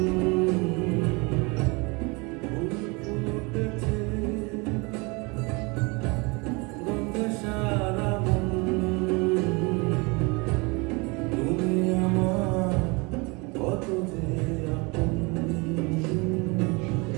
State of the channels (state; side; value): quieter; left; 27.9 dB